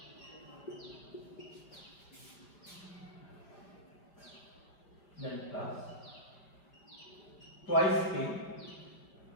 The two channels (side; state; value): right; late; 4.9 ms